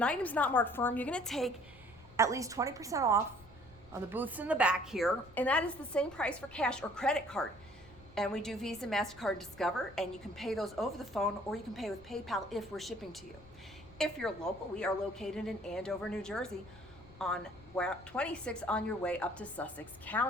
item's not marked firm, you're going to take at least 20% off on the booths in the back here. And that is the same price for cash or credit card. And we do Visa, MasterCard, Discover, and you can pay those over the phone, or you can pay with PayPal if we're shipping to you. If you're local, we are located in Andover, New Jersey, on 26 on your way up to Sussex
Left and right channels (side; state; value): left; noise; rumble, 22 dB below the sound